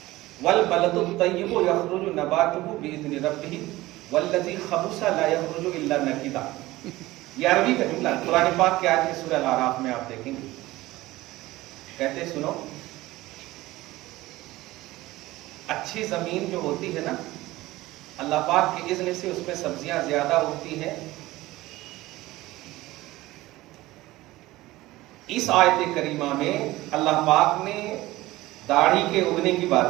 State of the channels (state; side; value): quieter; left; 18.1 dB